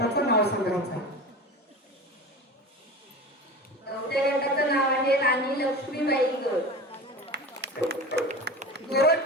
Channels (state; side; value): normal; both; correlation 0.32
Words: नाव सांगायचं. 4थ्या गटाचं नाव आहे राणी लक्ष्मीबाई गट.